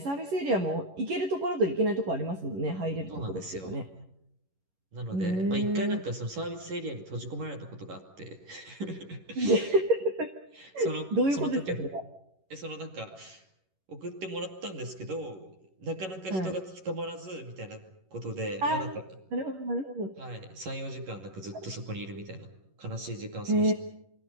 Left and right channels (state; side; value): late; left; 11 ms